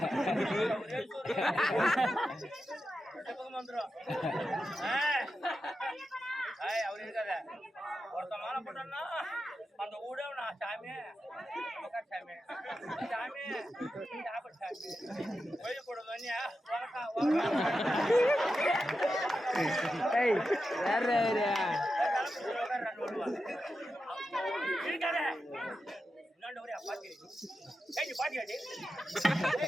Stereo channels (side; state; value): both; normal; correlation 0.90